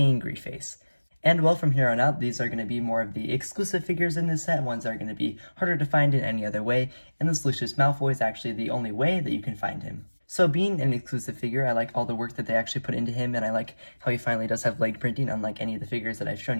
face. And well, from here on out, these are going to be more of the exclusive figures in this set, ones that are going to be harder to find in any other way, and this Lucius Malfoy is actually the only way that you can find him. So being an exclusive figure, I like all the work that they actually put into him, and I like how he finally does have leg printing, unlike any of the figures that I've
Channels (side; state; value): both; inverted; correlation -1.00